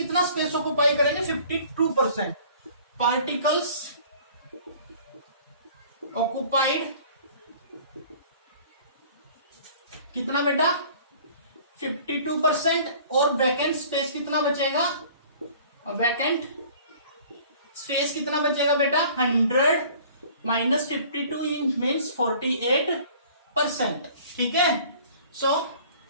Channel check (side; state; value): both; inverted; correlation -0.50